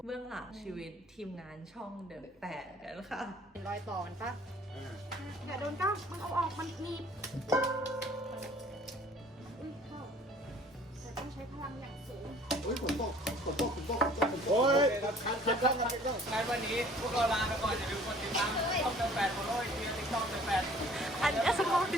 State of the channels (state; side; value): normal; both; correlation 0.53